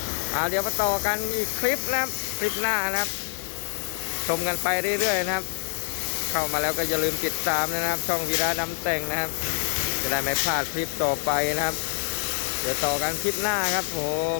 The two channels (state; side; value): silent; right; 61 dB below the other